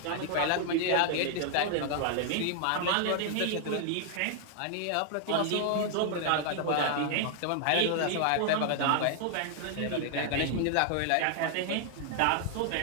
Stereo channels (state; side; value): different; both; correlation 0.00